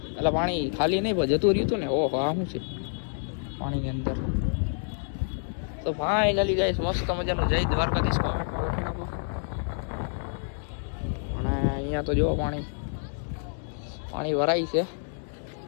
એટલે પાણી ખાલી નહીં પણ જતું રહ્યું હતું ને. ઓહો આ શું છે પાણીની અંદર. તો ફાઇનલી ગાઈસ મસ્ત મજાનું જય દ્વારકાધીશ કોમેન્ટમાં લખી નાખો. અને અહીંયા તો જો પાણી ભરાય છે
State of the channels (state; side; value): silent; right; digital silence